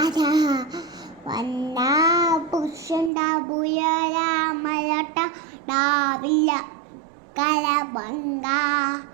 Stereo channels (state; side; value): drops out; left; at 3.1 s